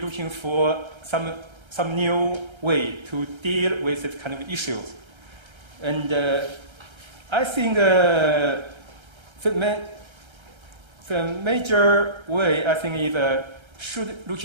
for some new way to deal with this kind of issues. And I think the major way, I think, is should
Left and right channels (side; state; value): left; late; 1.3 ms